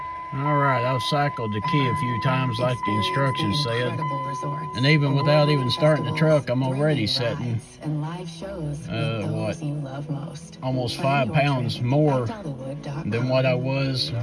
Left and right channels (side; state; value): both; identical; correlation 1.00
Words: Alright, I've cycled the key a few times like the instructions said. And even without even starting the truck, I'm already setting, almost 5 pounds more than what I was